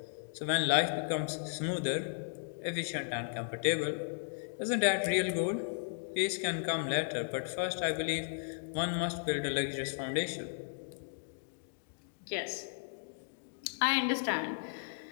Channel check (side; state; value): right; silent; digital silence